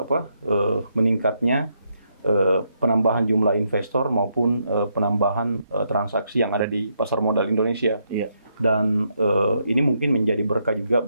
meningkatnya penambahan jumlah investor maupun penambahan transaksi yang ada di pasar modal Indonesia. Iya. Dan ini mungkin menjadi berkah juga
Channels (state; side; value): inverted; both; correlation -0.78